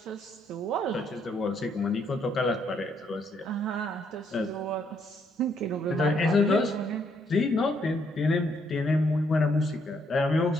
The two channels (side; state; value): both; normal; correlation 0.72